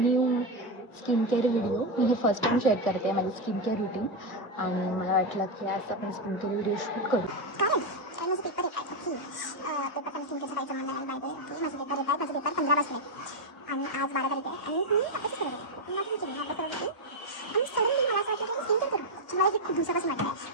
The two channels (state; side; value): late; right; 1.6 ms